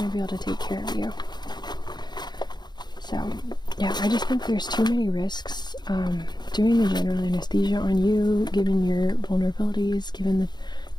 to be able to take care of you. So yeah, I just think there's too many risks doing the general anesthesia on you, given your vulnerabilities, given the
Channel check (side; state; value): right; late; 0.21 ms